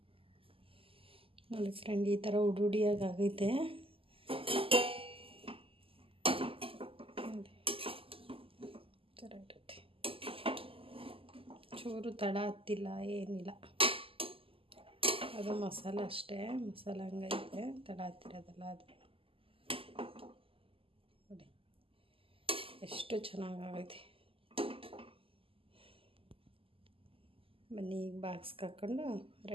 ನೋಡಿ ಫ್ರೆಂಡ್. ಈ ಥರ ಉಡುಡಿಯಾಗಿ ಆಗೈತೆ ಇರುತ್ತೆ. ಚೂರು ತಡ ಹತ್ತಿಲ್ಲ, ಏನಿಲ್ಲ. ಅದು ಮಸಾಲೆ ಅಷ್ಟೇ, ಮಸಾಲೆ ಹಂಗೈತೆ, ತಡ ಹತ್ತಿರೋದಲ್ಲ ಅದು. ನೋಡಿ ಎಷ್ಟು ಚೆನ್ನಾಗೈತೆ. ಬನ್ನಿ ಈಗ ಬಾಕ್ಸ್ಗೆ ಹಾಕ್ಕೊಂಡು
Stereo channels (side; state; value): left; late; 0.26 ms